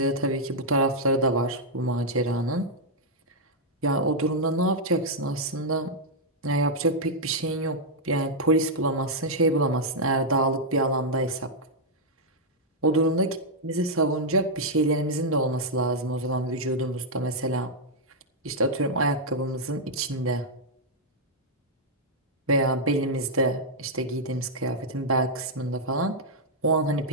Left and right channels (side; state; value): both; normal; correlation -0.05